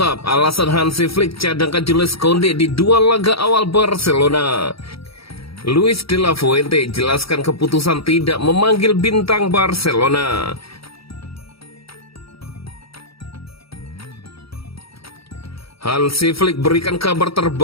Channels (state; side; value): late; right; 0.76 ms